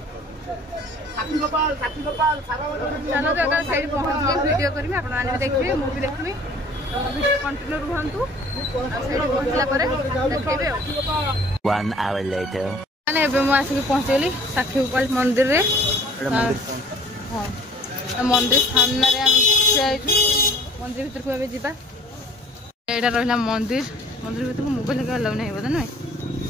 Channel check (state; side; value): normal; both; correlation 0.52